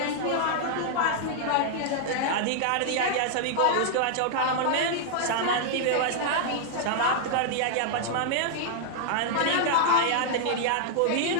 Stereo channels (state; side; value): different; both; correlation -0.01